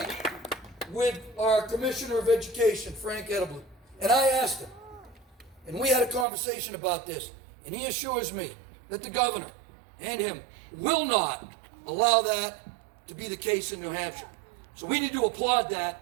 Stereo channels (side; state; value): left; drops out; at 6.2 s